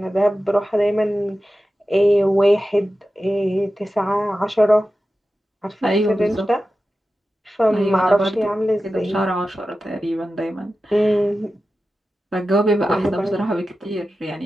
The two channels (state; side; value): normal; both; correlation 0.93